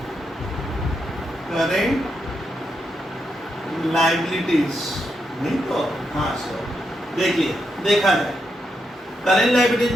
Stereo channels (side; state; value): both; normal; correlation 0.82